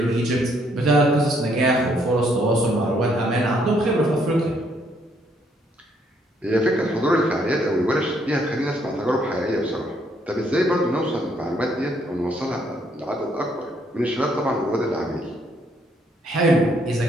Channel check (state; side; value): normal; both; correlation 0.70